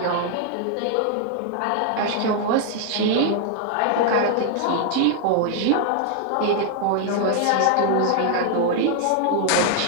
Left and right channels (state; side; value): different; both; correlation 0.00